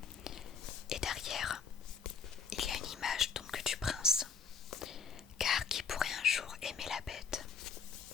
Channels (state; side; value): quieter; right; 6.0 dB